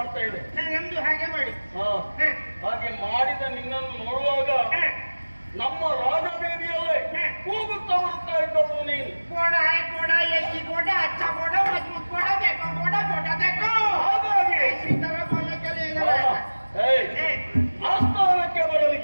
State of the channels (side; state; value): both; inverted; correlation -1.00